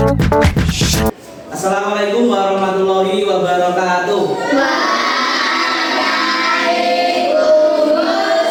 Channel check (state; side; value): identical; both; correlation 1.00